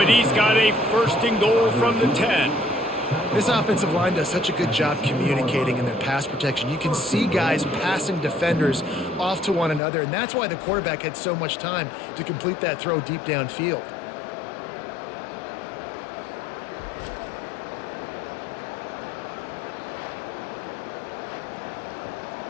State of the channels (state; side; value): drops out; right; at 9.8 s